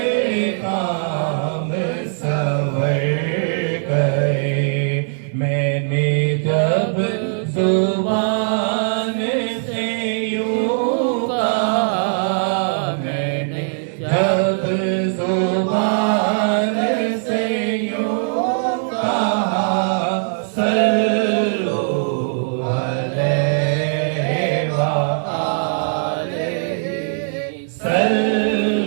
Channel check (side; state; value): left; silent; 64 dB below the other